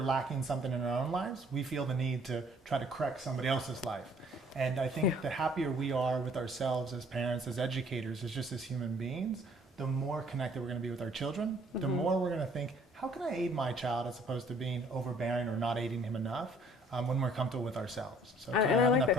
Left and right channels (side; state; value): both; normal; correlation 0.58